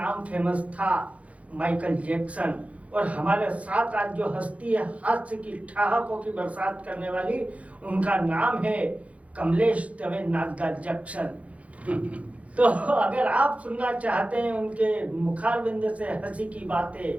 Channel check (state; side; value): late; left; 0.065 ms